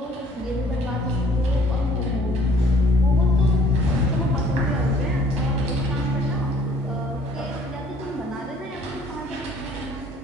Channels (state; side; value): normal; both; correlation 0.57